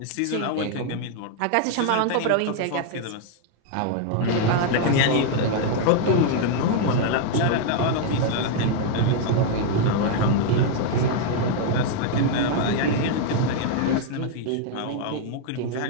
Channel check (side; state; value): both; different; correlation 0.00